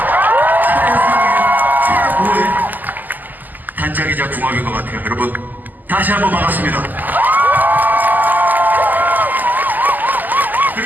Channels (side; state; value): left; late; 0.085 ms